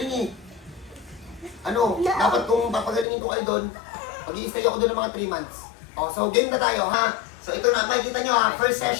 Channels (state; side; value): drops out; right; at 3.1 s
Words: eh. Dapat kung papagalingin ko kayo doon, mag-i-stay ako doon ng mga 3 months. So game na tayo ha. So ito na, makikita nyo ha, first